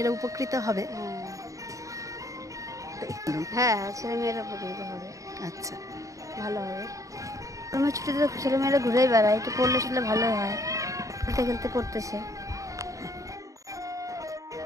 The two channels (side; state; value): left; late; 0.16 ms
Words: উপকৃত হবে? হ্যাঁ, ছেলেমেয়েরা উপকৃত হবে। আচ্ছা, ভালো হবে। গরমের ছুটিতে ছেলেমেয়েরা ঘুরেই বেড়ায়, একটু পড়লে শুনলে ভালো হয়। খেলতে খেলতে পড়তেছে।